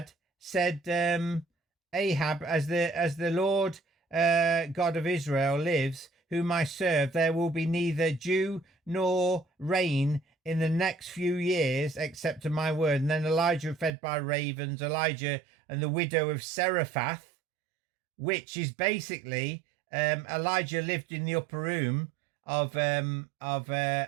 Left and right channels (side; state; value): left; drops out; at 13.9 s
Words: said, Ahab, as the Lord God of Israel lives, whom I serve, there will be neither dew nor rain in the next few years, except to my word. And then Elijah fed by ravens, Elijah and the widow of Seraphath, which is basically Elijah lived in the upper room of